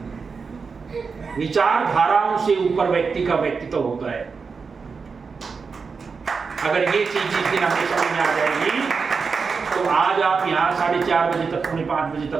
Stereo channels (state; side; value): quieter; left; 5.1 dB